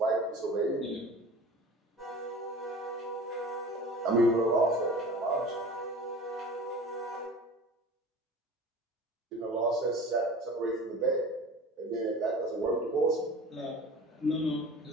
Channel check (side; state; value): both; normal; correlation 0.39